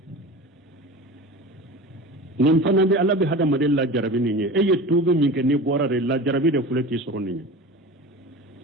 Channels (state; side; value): normal; both; correlation 0.33